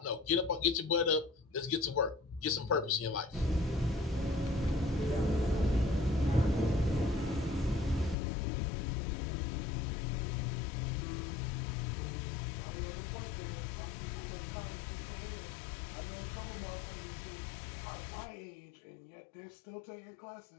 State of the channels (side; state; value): right; drops out; at 8.2 s